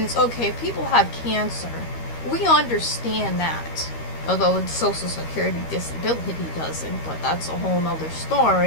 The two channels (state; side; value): late; right; 13 ms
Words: okay, people have cancer. We understand that. Although the Social Security disability doesn't, but that's a whole nother